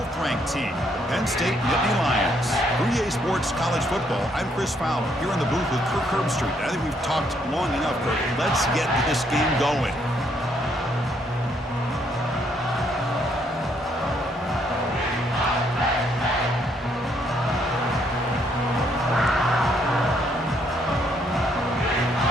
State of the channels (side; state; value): both; normal; correlation 0.71